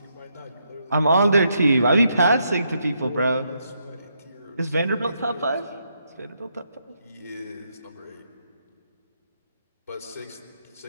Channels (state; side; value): inverted; both; correlation -0.79